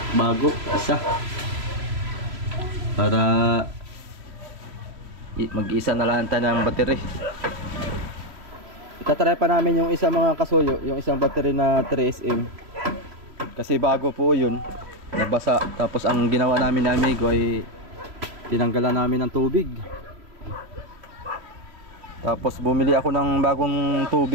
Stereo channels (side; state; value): left; late; 3.0 ms